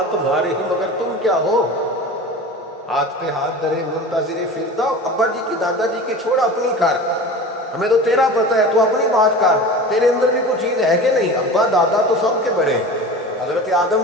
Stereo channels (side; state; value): both; normal; correlation 0.34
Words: تمہارے ہی مگر تم کیا ہو، ہاتھ پہ ہاتھ درے منتظر فردا، ابا جی کی دادا جی کی چھوڑ اپنی کر، ہمیں تو تیرا پتہ ہے تو اپنی بات کر، تیرے اندر بھی کوئی چیز ہے کہ نہیں۔ ابا دادا تو سب کے بڑے، حضرت آدم